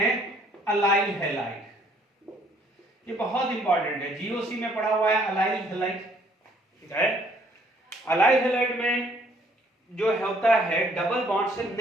अलाइल हेलाइड। ये बहुत इंपॉर्टेंट है, जीओसी में पढ़ा हुआ है अलाइल हेलाइड, ठीक है। अलाइल हेलाइड में जो होता है डबल बॉन्ड से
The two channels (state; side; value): normal; both; correlation 0.63